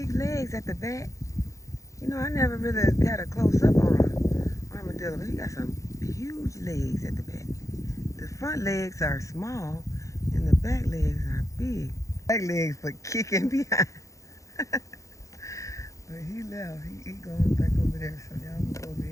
legs at the back. You know, I never really got a close-up on an armadillo, but he got some huge legs at the back. The front legs are small, and the back legs are big. Back legs for kicking behind. But he left. He going back over there, so y'all can go over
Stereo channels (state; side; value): late; right; 0.15 ms